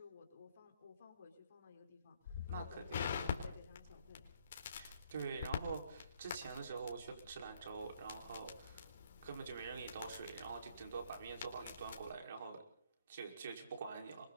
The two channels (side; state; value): both; inverted; correlation -0.66